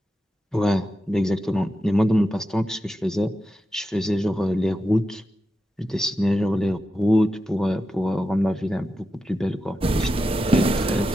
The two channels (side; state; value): both; normal; correlation 0.90